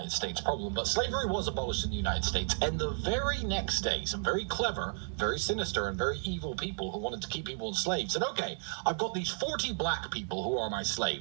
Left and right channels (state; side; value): silent; left; digital silence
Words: States problem, but slavery was abolished in the United States, and the very next day, some very clever, very sinister, and very evil people who wanted to keep people enslaved said, okay, I've got these 40 black people who are my